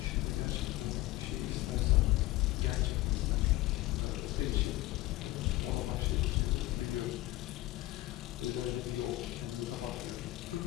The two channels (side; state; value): right; quieter; 18.0 dB